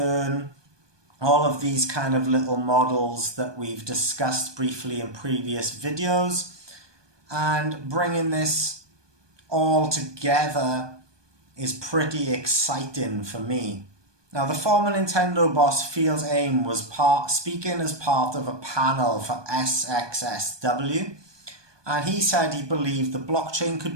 all of these kind of little models that we've discussed briefly in previous videos, and bringing this all together is pretty exciting for me. Now, the former Nintendo boss Fils-Aimé was speaking as part of a panel for SXSW, and he said he believed the blockchain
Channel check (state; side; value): late; left; 1.2 ms